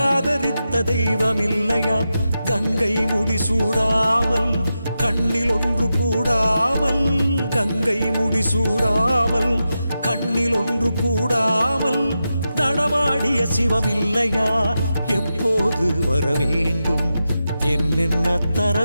ஆதரித்த தெய்வம் இல்லையா? கங்கை முடிசூடாமல் கண்ணில் ஒன்று கூடாமல், கங்கை முடிசூடாமல் கண்ணில் ஒன்று கூடாமல் நடமாடிய சிவம் இல்லையா? எப்போது வர வேண்டும், என்னென்ன தர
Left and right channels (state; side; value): inverted; both; correlation -0.90